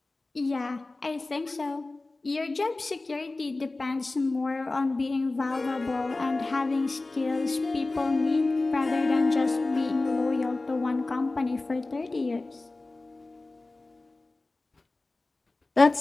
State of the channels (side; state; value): right; quieter; 3.2 dB